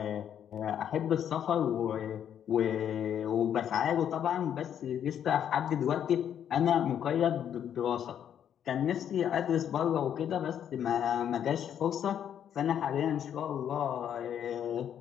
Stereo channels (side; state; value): right; quieter; 9.3 dB